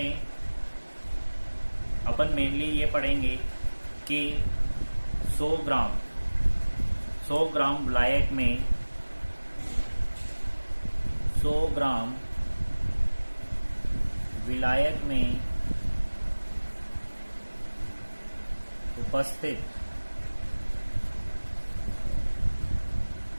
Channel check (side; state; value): both; inverted; correlation -1.00